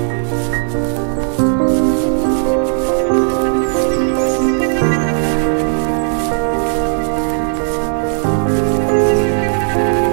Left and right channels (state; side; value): silent; left; 62 dB below the other